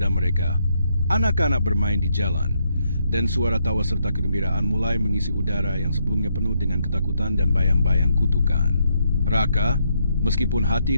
mereka, anak-anak bermain di jalan, dan suara tawa serta kegembiraan mulai mengisi udara yang sebelumnya penuh dengan ketakutan dan bayang-bayang kutukan. Raka, meskipun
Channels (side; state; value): both; inverted; correlation -0.76